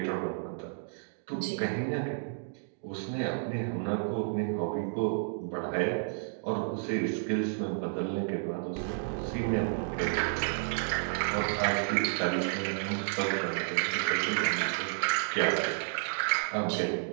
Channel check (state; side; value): silent; left; digital silence